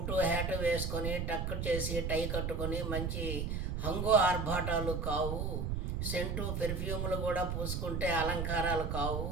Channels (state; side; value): noise; right; rumble, 1 dB below the sound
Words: హ్యాటు వేసుకొని టక్కు చేసి టై కట్టుకొని మంచి హంగు ఆర్భాటాలు కావు. సెంటు పెర్ఫ్యూములు కూడా పూసుకుంటే అలంకారాలు కావు.